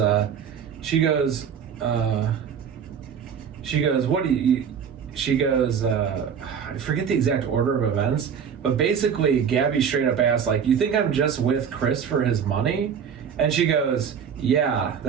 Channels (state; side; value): quieter; left; 7.4 dB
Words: she goes, what do you? She goes, I forget the exact order of events, but basically Gabby straight up asked, you think I'm just with Chris for his money? And she goes, yeah,